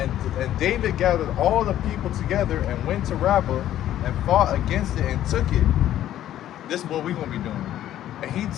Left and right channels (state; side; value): quieter; right; 12.3 dB